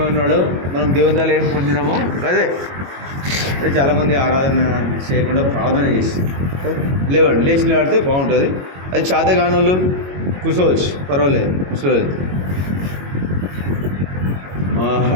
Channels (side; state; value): left; late; 22 ms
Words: మనం దేవుని ద్వారా ఏం పొందినామో అదే. అదే చాలామంది ఆరాధన చేయకుండా ప్రార్థన చేస్తారు. లేవండి, లేచి నిలబడితే బాగుంటుంది. అది చేతగానోళ్ళు కూర్చోవచ్చు, పర్వాలేదు, కూర్చోలేదు.